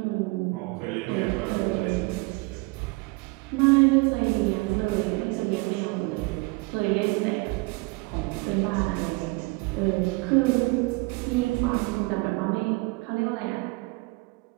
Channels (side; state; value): left; quieter; 26.1 dB